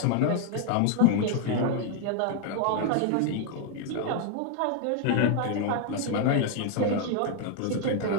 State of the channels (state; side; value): different; both; correlation 0.00